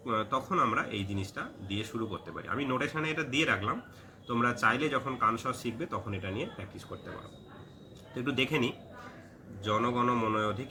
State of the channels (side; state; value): both; identical; correlation 1.00